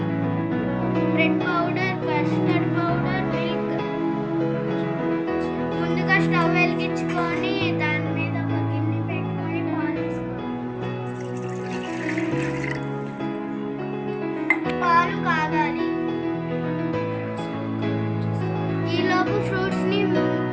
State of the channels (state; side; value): identical; both; correlation 1.00